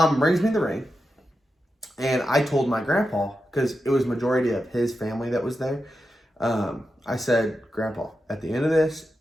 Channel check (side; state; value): both; normal; correlation 0.89